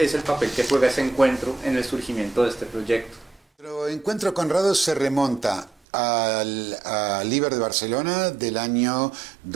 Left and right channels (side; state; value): left; drops out; at 5.8 s